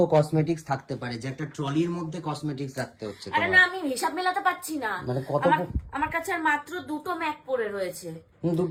কসমেটিক্স থাকতে পারে যে একটা ট্রলির মধ্যে কসমেটিক্স রাখতে হচ্ছে? আরে না, আমি হিসাব মেলাতে পারছি না। মানে কত আমার কাছে আর মাত্র দুটো ম্যাক পড়ে রয়েছে।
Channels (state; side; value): identical; both; correlation 1.00